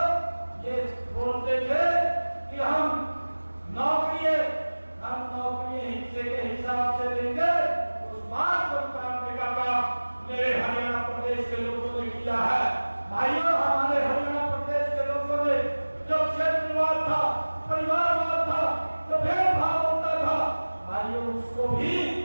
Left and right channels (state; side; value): inverted; both; correlation -1.00